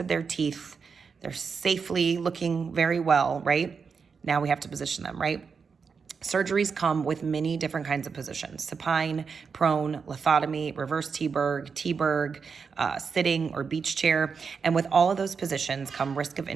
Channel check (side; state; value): left; quieter; 5.6 dB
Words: their teeth. They're safely looking very well, right? Now we have to position them, right? Surgeries come with many different kinds of positions: supine, prone, lithotomy, reverse T-Berg, sitting or beach chair. And with all of those positions come risk of